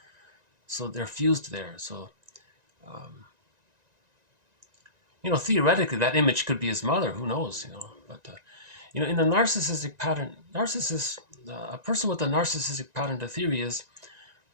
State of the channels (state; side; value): late; left; 1.9 ms